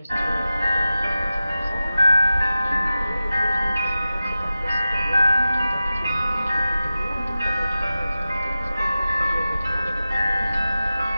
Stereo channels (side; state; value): both; inverted; correlation -0.94